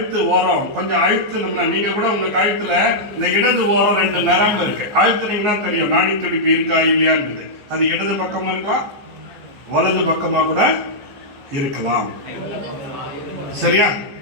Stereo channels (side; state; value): left; late; 15 ms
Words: ஓரம் கொஞ்சம் அழுத்தணும்னா, நீங்க கூட உங்க கழுத்துல இந்த இடது ஓரம் 2 நரம்பு இருக்கு, அழுத்தினீங்கன்னா தெரியும் நாடி துடிப்பு இருக்கா இல்லையான்னு. அது இடது பக்கமா இருக்கலாம், வலது பக்கமா கூட இருக்கலாம். சரியா?